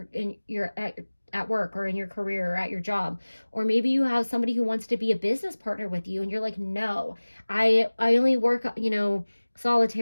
work or in your career or at your job. Or maybe you have somebody who wants to be a business partner with you, and you're like, no, I only work, you know,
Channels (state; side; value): inverted; both; correlation -1.00